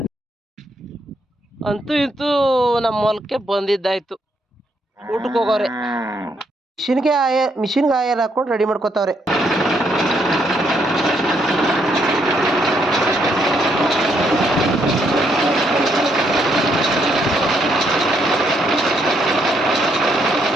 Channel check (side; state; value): both; normal; correlation 0.74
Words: ಅಂತೂ ಇಂತೂ ನಮ್ಮ ಹೊಲಕ್ಕೆ ಬಂದಿದ್ದಾಯ್ತು. ಊಟಕ್ಕೆ ಹೋಗೋರೆ ಮಿಷಿನ್ಗೆ ಆಯಲ್ ಹಾಕೊಂಡು ರೆಡಿ ಮಾಡ್ಕೋತಾವ್ರೆ.